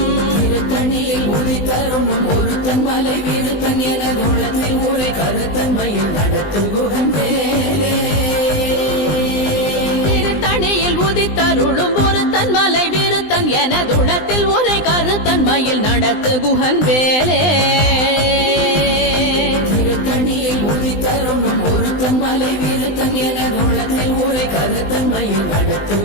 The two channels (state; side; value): late; right; 20 ms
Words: திருத்தணியில் உதித்தருணும் ஒருத்தன் மலை வீருத்தன் எனது உள்ளத்தில் ஊரை கருத்தன்மையில் நடத்துகுகன் வேலே. திருத்தணியில் உதித்தருளும் ஒருத்தன் மலை வீருத்தன் எனதுளத்தில் உரை கருத்தன்மையில் நடத்துகுகன் வேலே. திருத்தணியில் உதித்தருணும் ஒருத்தன் மலை வீருத்தன் எனது உள்ளத்தில் ஊரை கருத்தன்மையில்